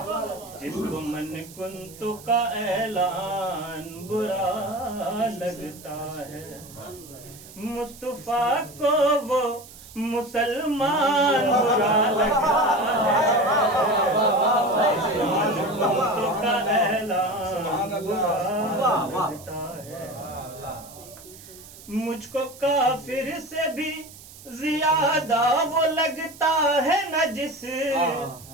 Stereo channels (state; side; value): noise; right; hiss, 19 dB below the sound